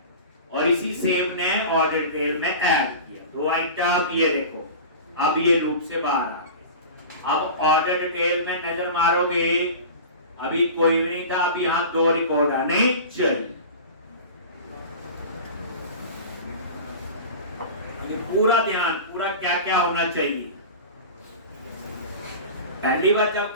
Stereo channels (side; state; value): both; inverted; correlation -0.34